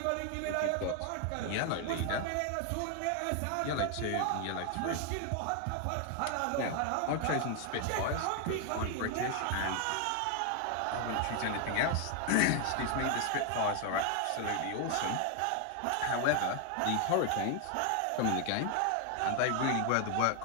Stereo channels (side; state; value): both; different; correlation 0.00